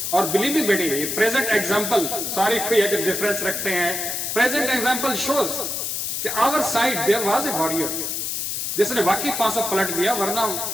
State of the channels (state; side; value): noise; left; hiss, 2 dB below the sound